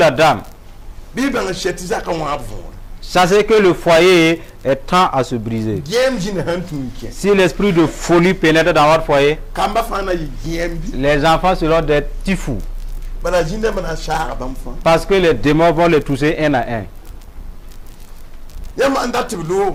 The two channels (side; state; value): both; identical; correlation 1.00